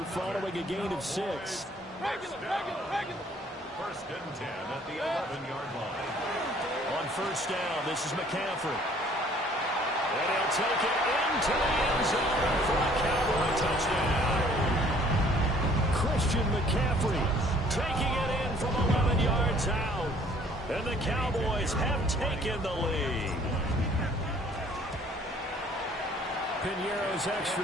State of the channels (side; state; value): both; normal; correlation 0.57